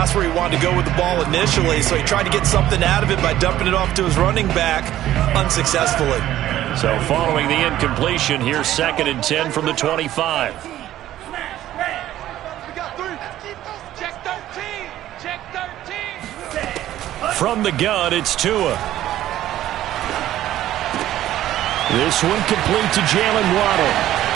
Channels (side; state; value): left; quieter; 13.3 dB